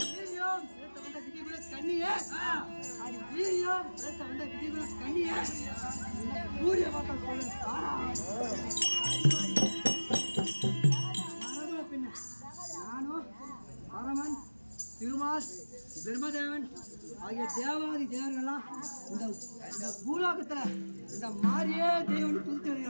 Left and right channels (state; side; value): inverted; both; correlation -1.00